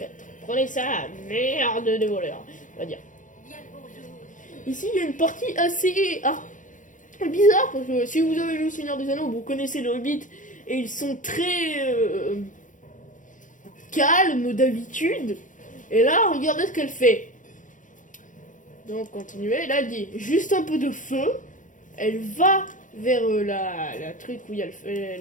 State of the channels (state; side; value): late; right; 0.37 ms